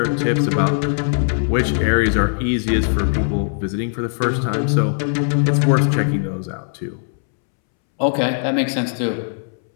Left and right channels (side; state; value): right; silent; 66 dB below the other